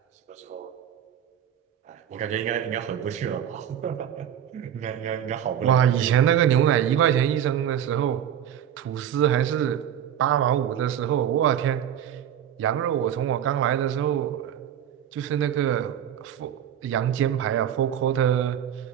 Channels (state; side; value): quieter; left; 9.9 dB